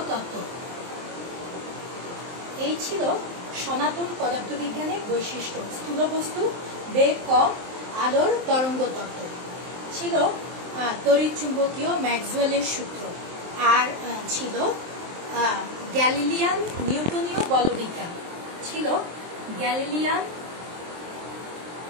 এই ছিল সনাতন পদার্থবিজ্ঞানের বৈশিষ্ট্য। স্থূল বস্তু, বেগ কম, আলোর তরঙ্গ তত্ত্ব ছিল তড়িৎচুম্বকীয় ম্যাক্সওয়েলের সূত্র। আর ছিল গ্যালিলিয়ান নিউটনীয় বলবিজ্ঞান। গ্যালিলিয়ান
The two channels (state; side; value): late; left; 23 ms